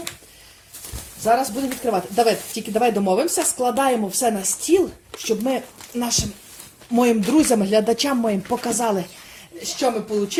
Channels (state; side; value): identical; both; correlation 1.00